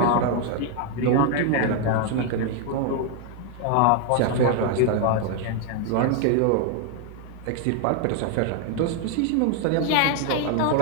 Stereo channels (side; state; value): both; different; correlation 0.01